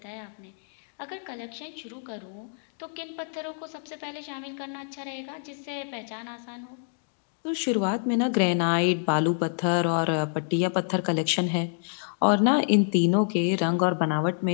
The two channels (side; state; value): right; silent; digital silence